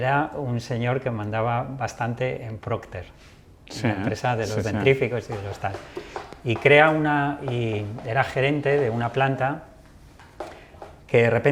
un señor que mandaba bastante en Procter, la empresa de los dentríficos y de los tal, y era gerente de una planta que de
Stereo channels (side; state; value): both; identical; correlation 1.00